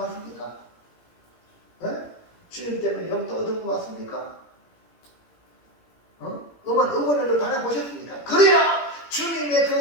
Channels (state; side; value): late; right; 17 ms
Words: 주님 때문에 욕도 얻어먹었습니까? 응원을 당해보셨습니까? 그래야 주님의